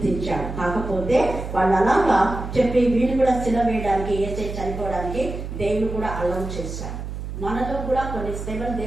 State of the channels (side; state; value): right; noise; hum, 7 dB below the sound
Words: తీర్చాడు. కాకపోతే వాళ్ళు అలాగా చెప్పి వీళ్ళు కూడా సిలువ వేయడానికి, ఏసై చనిపోవడానికి దేవుడు కూడా అలౌ చేశాడు. మనలో కూడా కొన్ని శ్రమలు